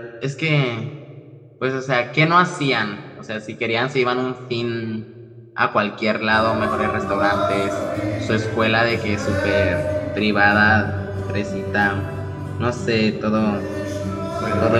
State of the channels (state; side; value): identical; both; correlation 1.00